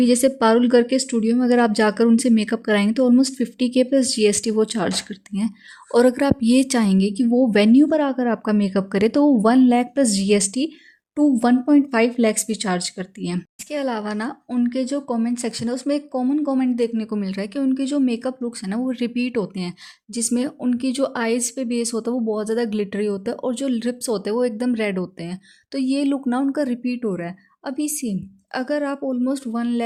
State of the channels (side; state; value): both; identical; correlation 1.00